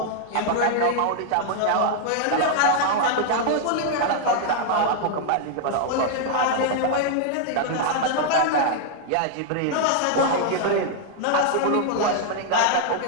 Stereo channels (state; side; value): different; both; correlation -0.01